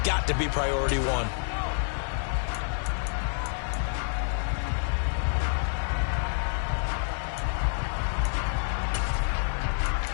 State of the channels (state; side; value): silent; right; digital silence